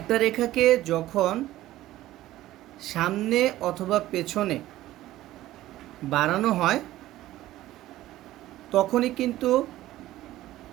রেখাকে যখন সামনে অথবা পেছনে বাড়ানো হয়, তখনই কিন্তু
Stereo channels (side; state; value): left; quieter; 15.3 dB